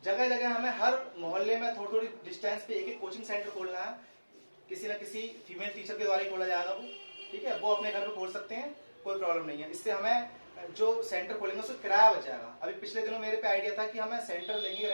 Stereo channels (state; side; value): inverted; both; correlation -1.00